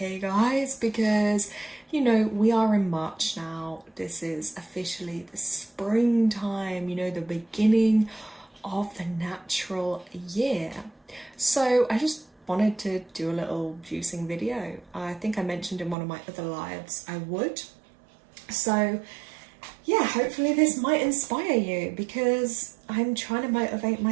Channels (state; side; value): drops out; left; at 16.0 s